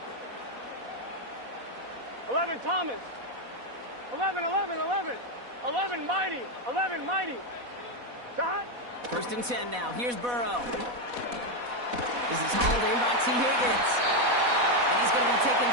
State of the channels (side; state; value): left; late; 4.1 ms